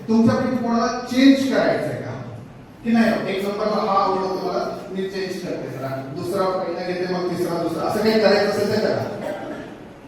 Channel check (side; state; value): both; identical; correlation 1.00